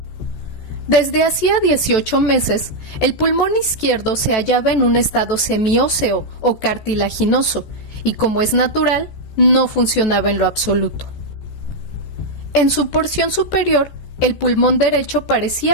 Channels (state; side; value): late; right; 14 ms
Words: Desde hacía 18 meses, el pulmón izquierdo se hallaba en un estado semióseo o cartilaginoso y, como es natural, no funcionaba en lo absoluto. En su porción superior, el pulmón derecho